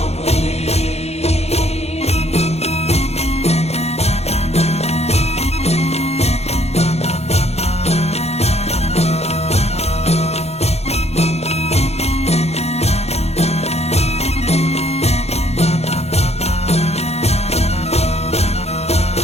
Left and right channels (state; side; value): late; right; 0.31 ms